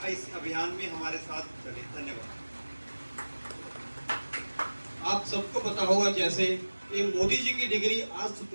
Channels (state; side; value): inverted; both; correlation -1.00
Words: इस अभियान में हमारे साथ चलें। धन्यवाद। आप सबको पता होगा जैसे ये मोदी जी की डिग्री आज